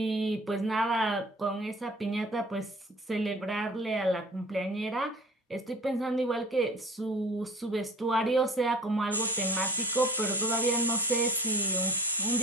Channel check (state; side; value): normal; both; correlation 0.46